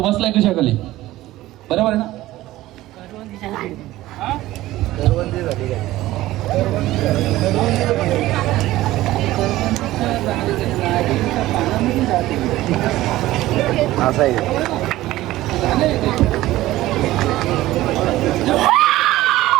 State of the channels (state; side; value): quieter; left; 16.3 dB